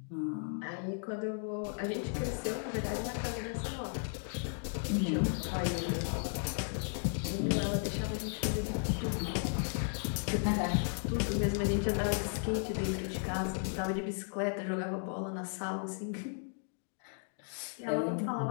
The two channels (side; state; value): right; silent; 54 dB below the other